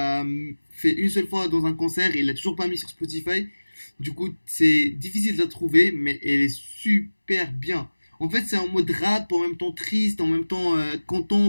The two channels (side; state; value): both; inverted; correlation -1.00